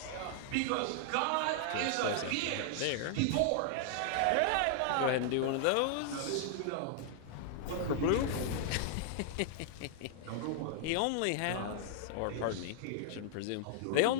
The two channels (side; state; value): both; different; correlation -0.01